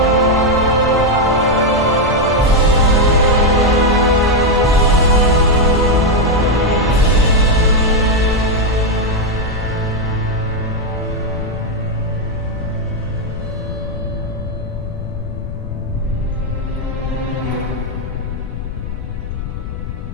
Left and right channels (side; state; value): left; noise; rumble, 8 dB below the sound